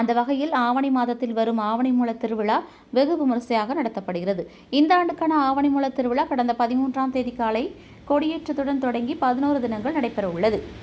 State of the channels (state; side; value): identical; both; correlation 1.00